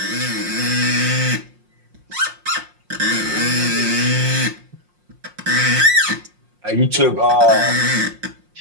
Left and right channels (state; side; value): late; left; 5.6 ms